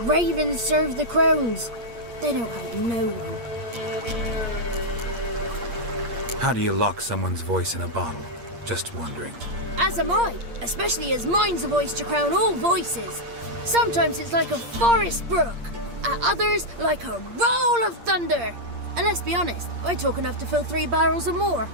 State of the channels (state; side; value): late; left; 8.6 ms